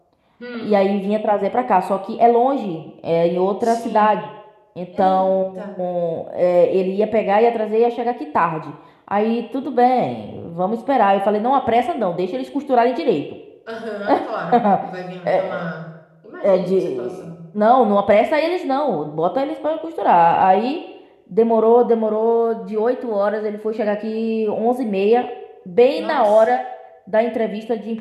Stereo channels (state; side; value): identical; both; correlation 1.00